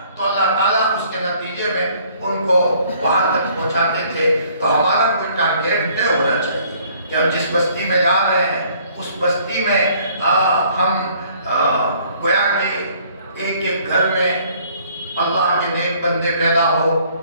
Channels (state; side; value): inverted; both; correlation -0.59